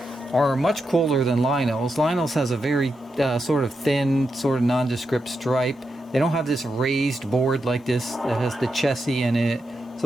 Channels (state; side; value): normal; both; correlation 0.86